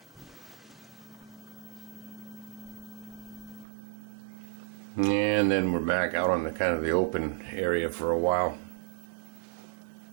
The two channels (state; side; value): drops out; left; at 3.7 s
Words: And then we're back out on the kind of the open area for a while.